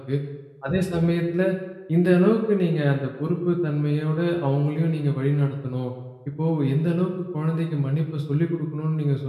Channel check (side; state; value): both; identical; correlation 1.00